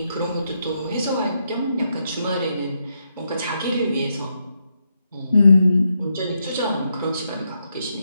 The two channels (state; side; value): inverted; both; correlation -0.81